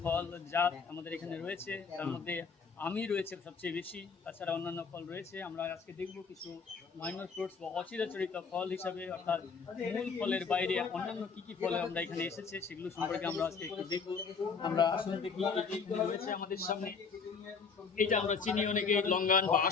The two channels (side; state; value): right; quieter; 5.4 dB